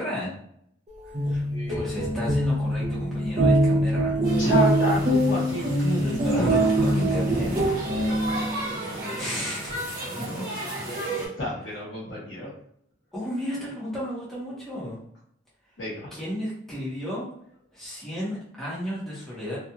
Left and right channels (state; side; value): normal; both; correlation 0.62